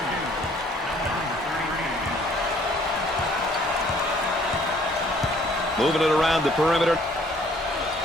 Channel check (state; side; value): normal; both; correlation 0.59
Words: one. Moving it around the perimeter.